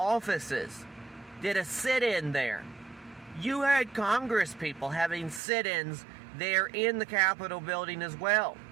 Did a sit-in there. You had Congress people having sit-ins there in the Capitol building as well.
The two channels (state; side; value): drops out; left; at 5.4 s